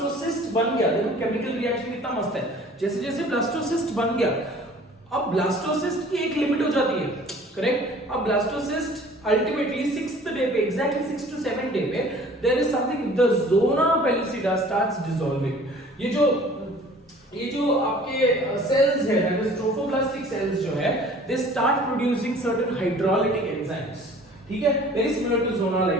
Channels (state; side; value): normal; both; correlation 0.49